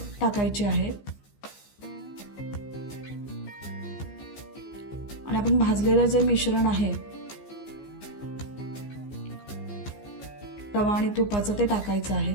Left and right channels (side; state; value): right; late; 15 ms